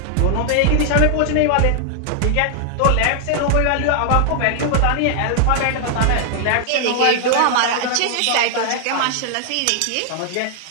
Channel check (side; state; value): both; different; correlation 0.00